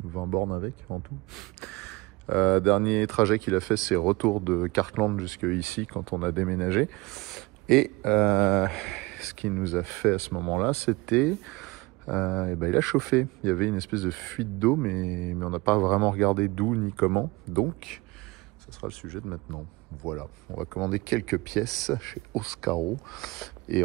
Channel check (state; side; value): quieter; left; 23.6 dB